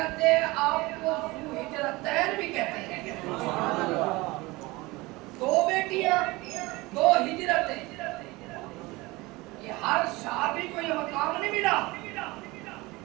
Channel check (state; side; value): quieter; left; 22.2 dB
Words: ہیں آپ کو ذوالہجرتین بھی کہتے ہیں. دو بیٹیاں دو ہجرتیں یہ ہر صحابی کو یہ مقام نہیں ملا.